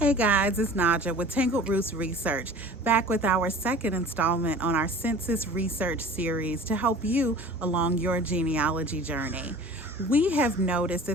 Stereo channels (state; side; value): normal; both; correlation 0.43